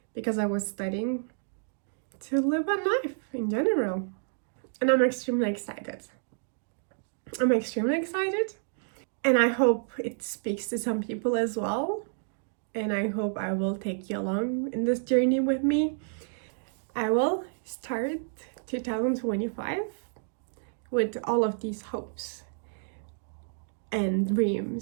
because I was studying, to live a life in general. And I'm extremely excited. And I hope it speaks to some people as well. And I hope I will take you along in this journey with me. I will start 2025 with all of these hopes and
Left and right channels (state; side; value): silent; left; digital silence